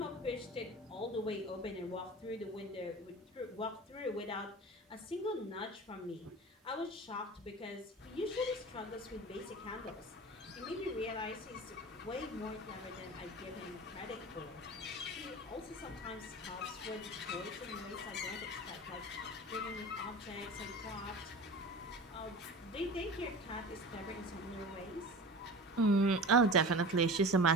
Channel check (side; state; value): both; normal; correlation 0.35